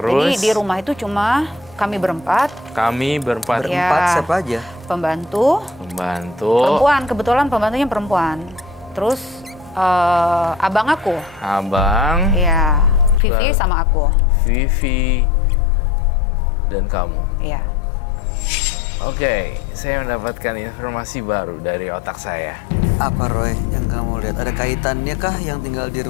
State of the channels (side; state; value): right; drops out; at 13.2 s